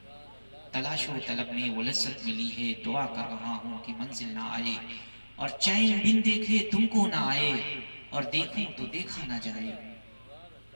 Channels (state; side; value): inverted; both; correlation -1.00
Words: تلاش و طلب نے وہ لذت ملی ہے، دعا کر رہا ہوں کہ منزل نہ آئے، اور چین بن دیکھے تم کو نہ آئے، اور دیکھوں تو دیکھا نہ جائے،